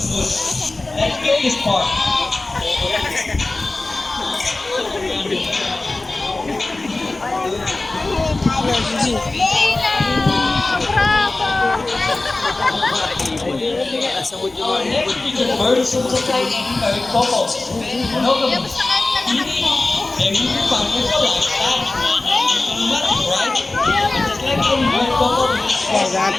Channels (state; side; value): quieter; right; 3.1 dB